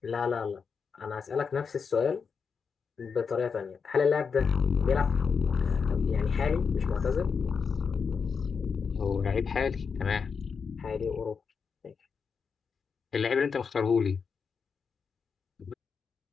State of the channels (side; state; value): right; quieter; 5.8 dB